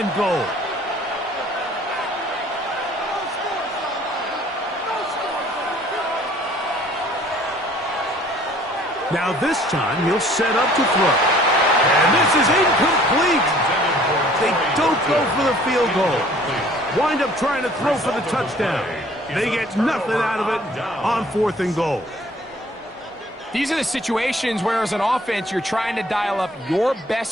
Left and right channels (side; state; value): both; normal; correlation 0.55